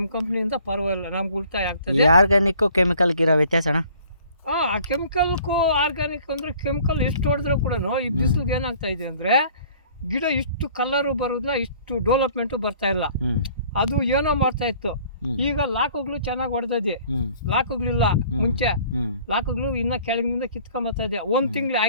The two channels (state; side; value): inverted; both; correlation -0.53